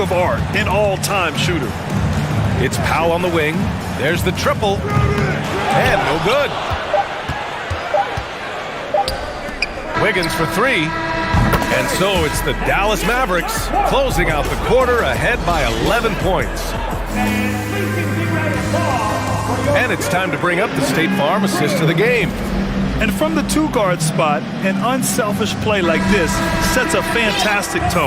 art, an all-time shooter. It's Powell on the wing. There's the triple. And no good. Wiggins for 3. And so it's the Dallas Mavericks closing out the quarter ahead by 11 points. And it's time to bring up the State Farm assist of the game. And from the 2-guard spot, an unselfish play like this sets a fantastic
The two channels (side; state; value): both; identical; correlation 1.00